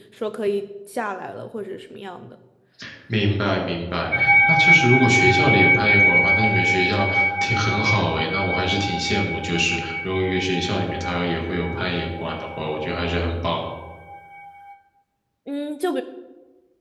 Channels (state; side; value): identical; both; correlation 1.00